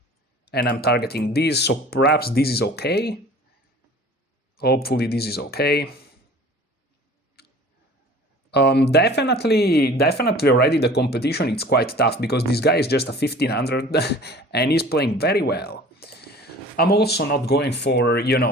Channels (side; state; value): both; normal; correlation 0.45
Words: and I'm targeting this, so perhaps this is okay. Hopefully this is okay. Definitely already the competition, it's quite tough, because this guy is just a 1500, and he's playing very well. I'm also not going for,